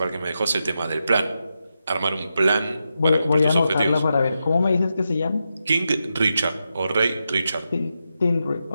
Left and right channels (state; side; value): inverted; both; correlation -0.87